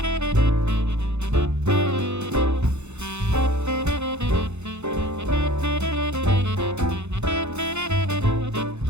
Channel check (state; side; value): late; left; 0.82 ms